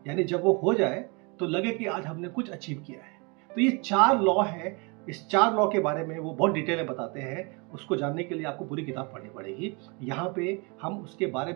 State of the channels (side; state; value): left; quieter; 30.8 dB